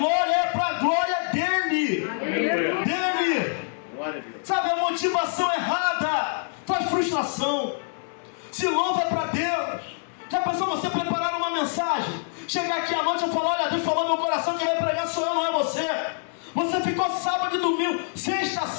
é para a glória dele. Dele. Sabe, a motivação errada faz frustração. Se louva é para Deus. Já pensou você preparar uma mensagem, chegar aqui à noite e falar: olha, Deus falou no meu coração, quem vai pregar sou eu, não é você. Você ficou sábado e domingo, sexta,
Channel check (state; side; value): silent; right; digital silence